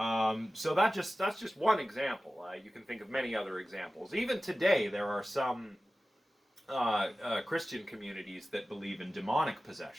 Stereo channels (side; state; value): both; normal; correlation 0.95